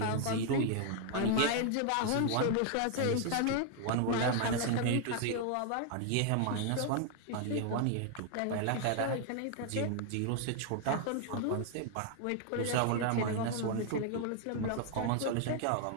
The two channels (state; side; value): different; both; correlation 0.00